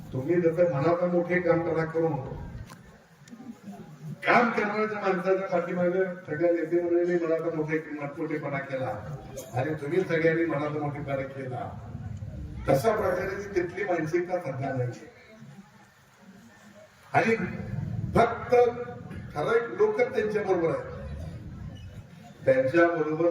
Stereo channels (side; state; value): both; identical; correlation 1.00